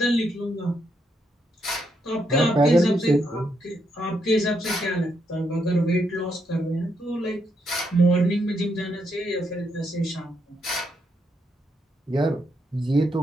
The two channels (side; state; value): both; normal; correlation 0.78